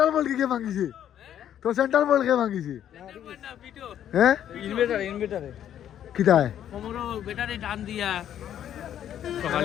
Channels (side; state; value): right; quieter; 10.4 dB